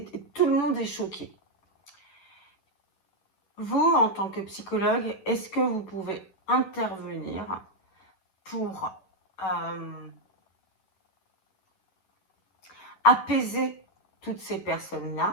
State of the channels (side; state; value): right; late; 11 ms